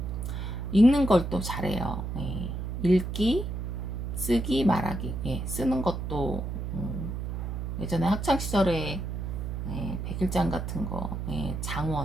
읽는 걸 또 잘해요. 예, 읽기, 쓰기, 말하기. 예, 쓰는 것도 예전에 학창 시절에 백일장 같은 거,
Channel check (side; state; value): right; noise; hum, 4 dB below the sound